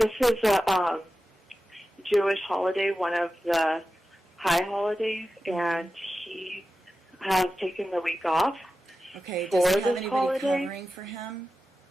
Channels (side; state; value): both; normal; correlation 0.93